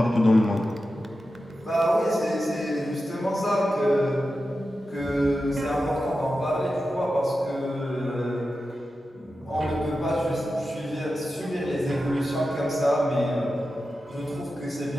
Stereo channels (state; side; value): normal; both; correlation 0.91